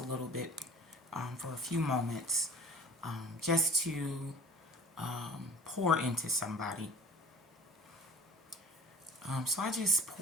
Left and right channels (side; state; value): both; normal; correlation 0.44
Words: little bit for a few moments just to pour into somebody. So I just